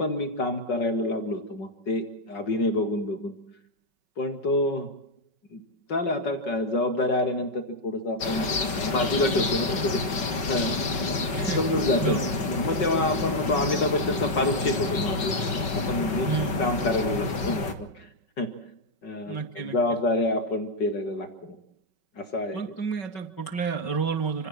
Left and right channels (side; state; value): right; late; 5.3 ms